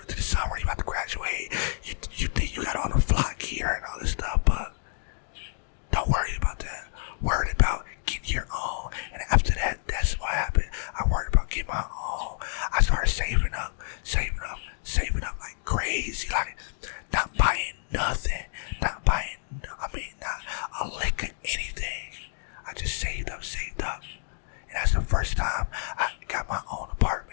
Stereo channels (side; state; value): right; silent; digital silence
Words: into the summer. You about to graduate. You think you got all the flock gear and all this stuff, but don't worry about that. Worried about getting your own. And after that, that's what happened. I worried about getting my own. I started saving up like crazy. Like, not buying nothing. Not a lick of anything. I just saved up. And that's the first time I got my own